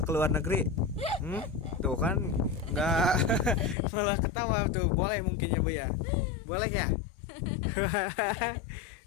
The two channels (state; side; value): drops out; right; at 3.8 s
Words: ke luar negeri? Tuh kan nggak malah ketawa tuh. Boleh mungkin ya Bu ya. Boleh ya.